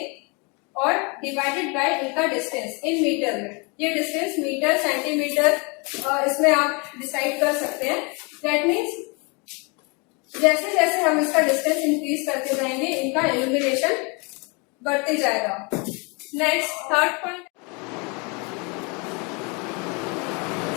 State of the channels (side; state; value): right; quieter; 31.1 dB